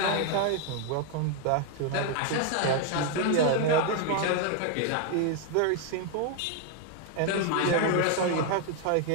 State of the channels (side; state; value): both; different; correlation 0.01